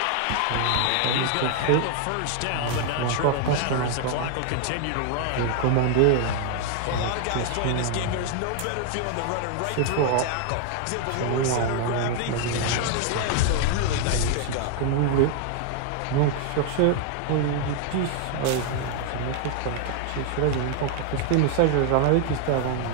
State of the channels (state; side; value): different; both; correlation 0.00